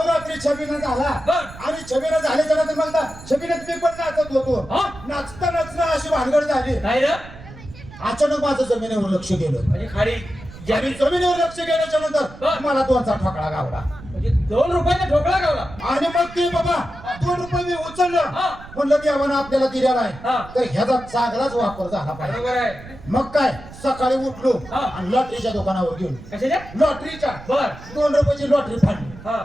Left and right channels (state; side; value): noise; right; rumble, 17 dB below the sound